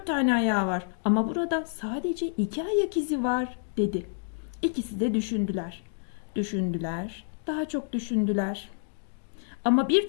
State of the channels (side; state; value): right; silent; digital silence